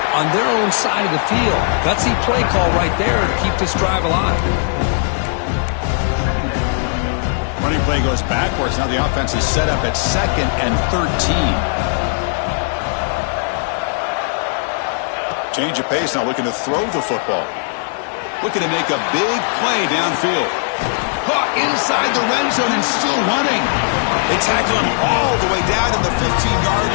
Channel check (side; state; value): right; silent; digital silence